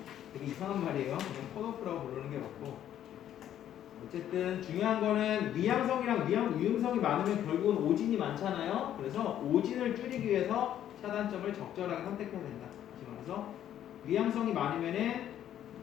되게 이상한 말이에요. 그냥 컷오프라고 부르는 게 맞고 어쨌든 중요한 거는 위양성이랑 위음성이 많으면 결국은 오진이 많잖아요. 그래서 오진을 줄이기 위해서 차단점을 적절하게 선택해야 된다. 다시 말해서 위양성이 많으면은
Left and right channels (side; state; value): right; quieter; 11.0 dB